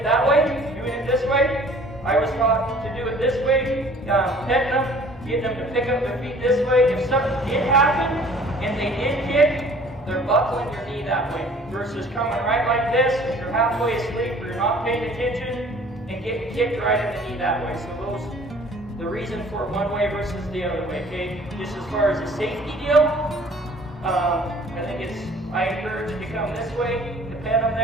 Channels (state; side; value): normal; both; correlation 0.52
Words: that way, doing it this way. I was taught to do it this way, petting them, getting them to pick up their feet this way. If something did happen and they did kick, they're buckling your knee that way versus coming right like this if you're halfway asleep or you're not paying attention and getting kicked right in the knee that way. So those, the reason for one way versus the other way, okay? Just as far as a safety deal, I encourage you to come this way, to pet them